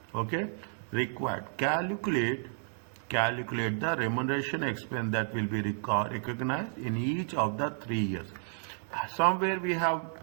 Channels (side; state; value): left; silent; 57 dB below the other